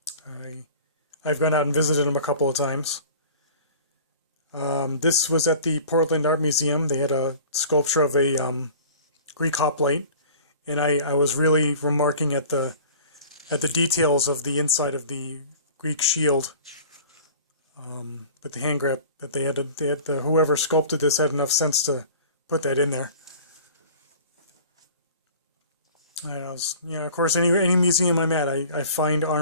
gone out and visited them a couple of times. This was at the Portland Art Museum. They had a sculpture of a Greek hoplite, and I was really remarking at the details of the inside of the Greek shield. With the hand grip that they had whoever sculpted this had enough sense to put that in there. Of course, any museum I'm at, I find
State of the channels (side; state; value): both; inverted; correlation -0.44